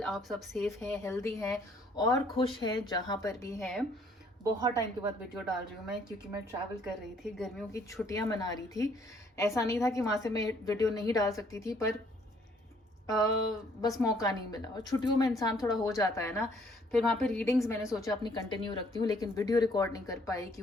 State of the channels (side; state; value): both; normal; correlation 0.63